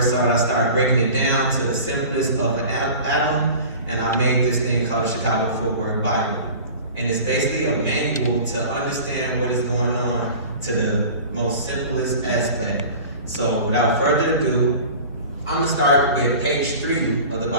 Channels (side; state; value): both; inverted; correlation -0.39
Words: saw it, I started breaking it down to the simplest of an atom, and I made this thing called the Chicago Footwork Bible. And it's basically a manual to understand what is going on to the most simplest aspect. So without further ado, I'm gonna start with page 3 of the